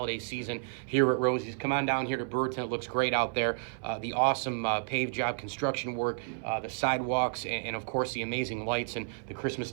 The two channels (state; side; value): silent; left; 55 dB below the other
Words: season here at Rosie's. Come on down here to Brewerton. It looks great out there. The awesome paved job construction work, the sidewalks, and of course the amazing lights and the Christmas